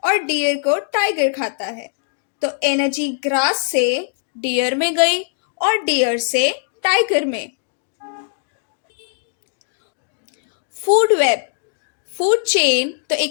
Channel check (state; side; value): silent; right; digital silence